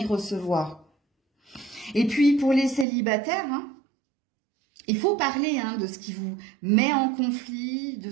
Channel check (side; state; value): left; drops out; at 2.9 s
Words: Et puis pour les célibataires, hein, il faut parler hein, de ce qui vous met en conflit, de